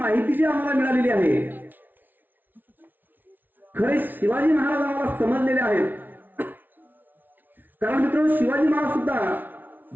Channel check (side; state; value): left; late; 0.087 ms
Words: जी आम्हाला मिळालेली आहे. खरे शिवाजी महाराज आम्हाला समजलेले आहेत. कारण मित्रांनो, शिवाजी महाराज सुद्धा